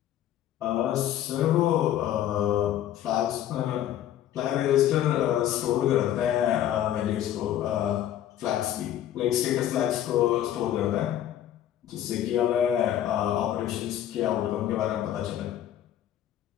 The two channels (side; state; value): right; quieter; 11.6 dB